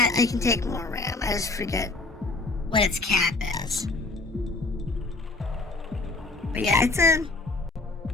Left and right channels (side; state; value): right; quieter; 3.3 dB